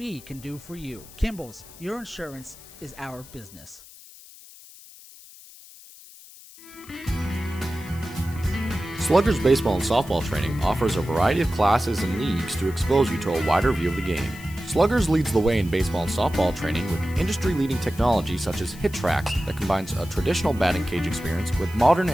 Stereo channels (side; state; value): left; noise; hiss, 20 dB below the sound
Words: can do for you. Kimball's, your insurance is our business. Sluggers baseball and softball training offers a variety of classes and leagues to expose you to a wider view of the game. Sluggers leads the way in baseball and softball training with industry-leading technology such as HitTrax that combines a traditional batting cage experience with modern